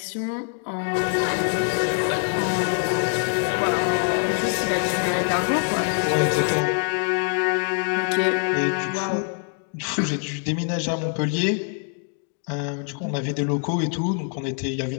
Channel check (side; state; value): right; quieter; 39.8 dB